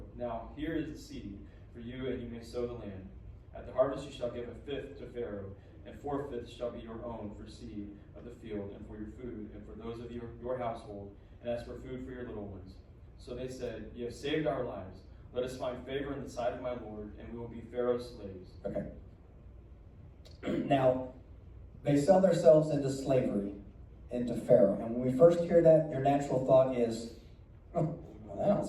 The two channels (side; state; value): both; identical; correlation 1.00